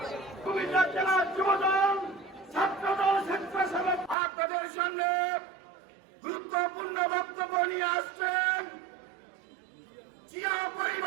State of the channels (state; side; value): drops out; left; at 4.2 s